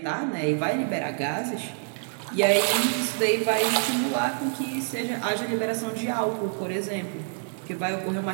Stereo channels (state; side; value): silent; left; 60 dB below the other